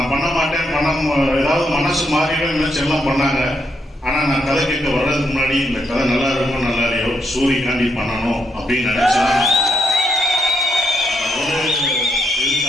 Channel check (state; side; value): normal; both; correlation 0.78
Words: பண்ண மாட்டேன், ஏதாவது மனசு மாறிடும் நினைச்சு எல்லாம் பண்ணாங்க. ஆனா நான் கதை கேட்க வர்றதுக்கு முன்னாடி இந்த கதை நல்லா இருக்கும் நல்லா இல்லையோ சூரியகாண்டி பண்ணணும் அப்படின்னு நினைச்சேன்.